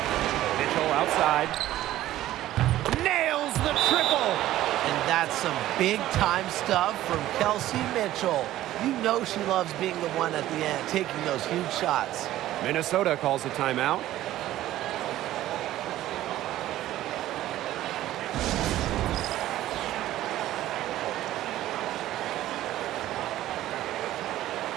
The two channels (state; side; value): quieter; left; 14.3 dB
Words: Mitchell outside. Nails the triple. And that's some big-time stuff from Kelsey Mitchell. You know she loves being the one at the end, taking those huge shots. Minnesota calls a timeout.